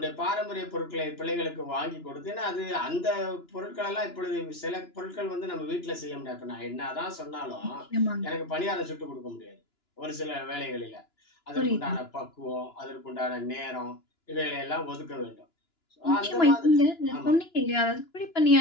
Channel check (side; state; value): right; late; 2.9 ms